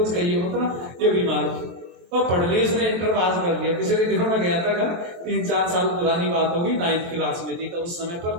कही हो ना, ये बीमार वो पढ़ ली, उसने इंटर पास कर लिया। पिछले दिनों में गया था घर, 3-4 साल पुरानी बात होगी, 9th क्लास में थी। तो उस समय पर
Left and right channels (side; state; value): left; late; 23 ms